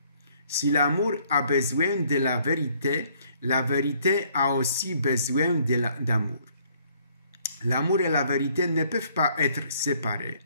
Si l'amour a besoin de la vérité a aussi besoin d'amour. L'amour et la vérité ne peuvent pas être séparés.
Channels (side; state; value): both; inverted; correlation -0.63